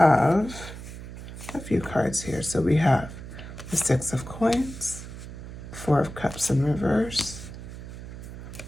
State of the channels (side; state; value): right; noise; hum, 12 dB below the sound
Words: a few cards here. So we have the 6 of Coins, 4 of Cups in reverse,